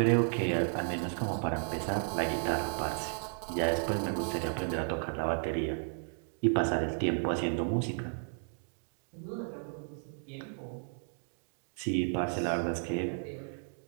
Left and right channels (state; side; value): silent; left; 55 dB below the other